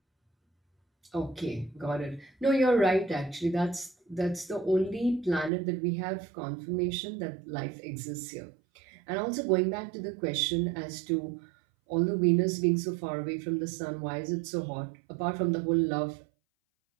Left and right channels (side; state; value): left; drops out; at 5.5 s